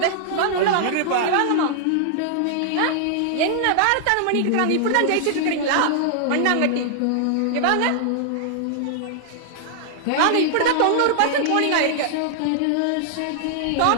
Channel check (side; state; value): both; different; correlation -0.01